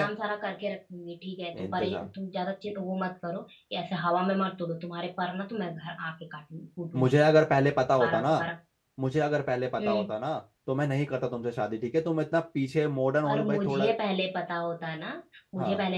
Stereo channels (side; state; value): both; identical; correlation 1.00